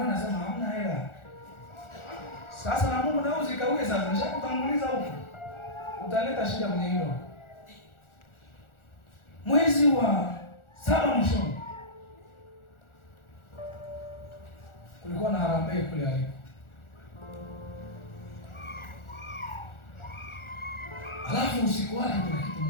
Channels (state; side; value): late; right; 1.4 ms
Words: anasema hamna hela. Sasa na Mungu nao zikaue sasa, nishakutanguliza huko, utaleta shida kwenye hilo. Mwezi wa 7 mwishoni kulikuwa na harambee kule alipo. Alafu usiku wake kuna kitu